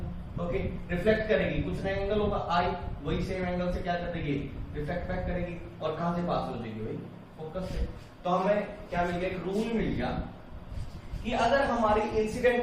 ओके, रिफ्लेक्ट करेगी, कुछ ना एंगल होगा आई, वही सेम एंगल से क्या कर देगी, रिफ्लेक्ट बैक करेगी। और कहां से पास हो जाएगी भाई, फोकस से। तो हमें क्या मिल गया, एक रूल मिल गया कि अगर हमारी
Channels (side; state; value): both; identical; correlation 1.00